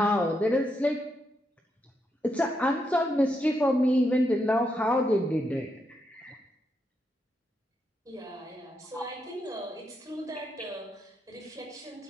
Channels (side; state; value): both; normal; correlation 0.81